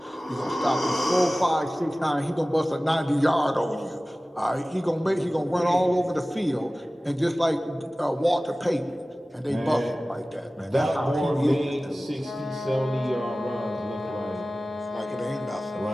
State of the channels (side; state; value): both; normal; correlation 0.97